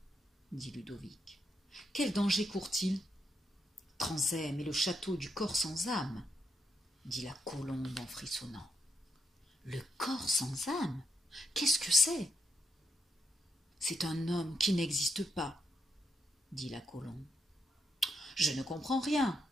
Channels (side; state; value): both; normal; correlation 0.80